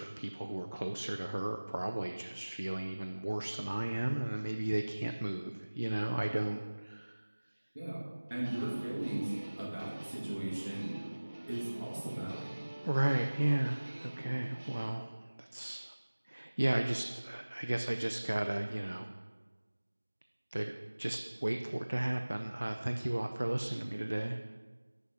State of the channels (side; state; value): both; inverted; correlation -1.00